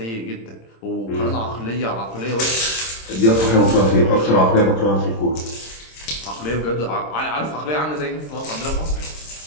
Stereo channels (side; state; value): right; late; 26 ms